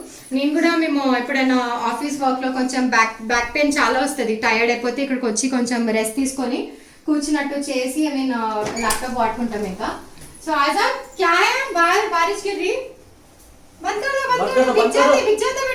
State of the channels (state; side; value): identical; both; correlation 1.00